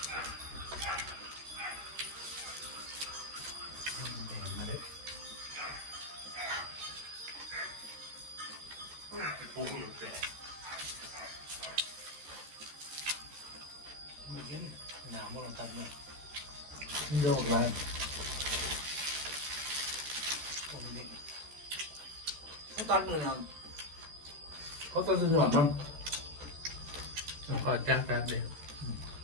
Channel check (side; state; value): left; late; 13 ms